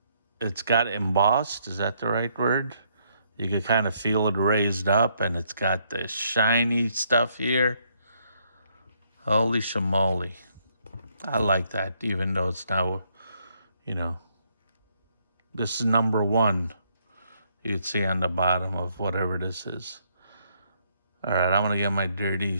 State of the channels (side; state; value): both; inverted; correlation -0.72